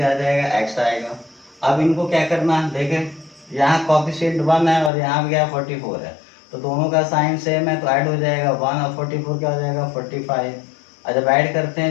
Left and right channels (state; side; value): drops out; right; at 4.9 s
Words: आ जाएगा x आएगा। अब इनको क्या करना है देखें, यहाँ कॉफिशिएंट 1 है और यहाँ भी क्या 44 है, तो दोनों का साइन सेम है तो ऐड हो जाएगा 1 और 44 क्या हो जाएगा 45। और जब ऐड करते